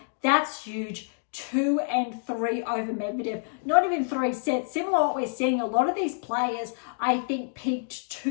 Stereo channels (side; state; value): right; silent; digital silence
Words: That's huge. 2-3 over Medvedev. Not even 3 sets. Similar to what we're seeing, a lot of these players, I think, peaked